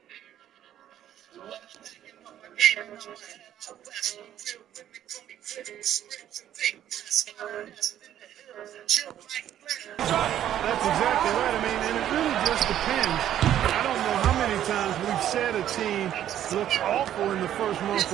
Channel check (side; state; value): left; quieter; 11.3 dB